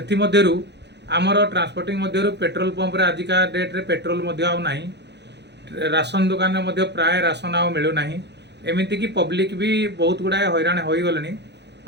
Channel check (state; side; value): late; left; 0.50 ms